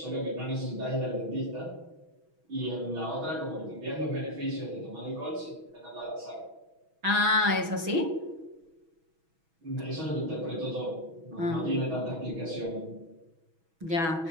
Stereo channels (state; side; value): late; left; 6.2 ms